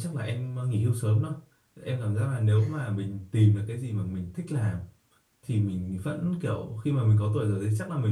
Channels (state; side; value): identical; both; correlation 1.00